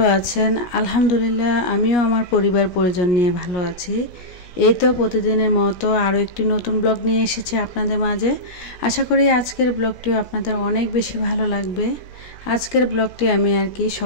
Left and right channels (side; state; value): right; late; 17 ms